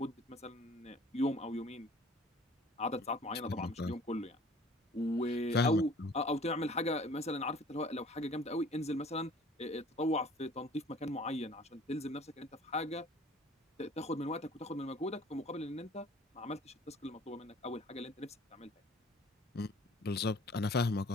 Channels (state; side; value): normal; both; correlation 0.51